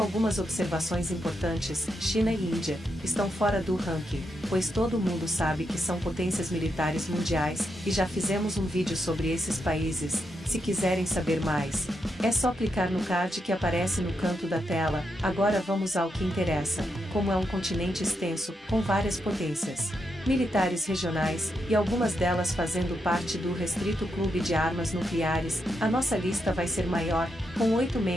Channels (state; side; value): normal; both; correlation 0.83